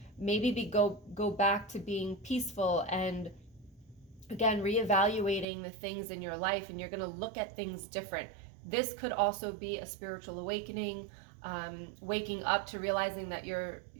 maybe go back to being peaceful and, again, reevaluating the things in your life, and you're going to look at things different. This could also be a spiritual awakening, waking up to realizing that your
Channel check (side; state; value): left; drops out; at 5.5 s